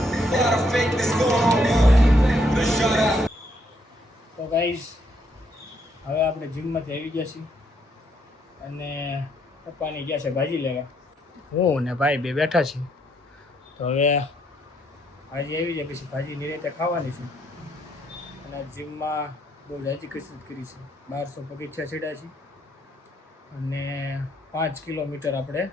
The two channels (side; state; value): both; normal; correlation 0.72